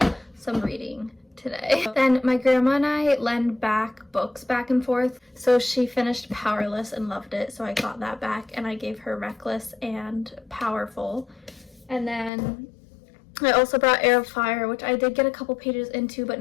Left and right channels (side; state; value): right; drops out; at 12.3 s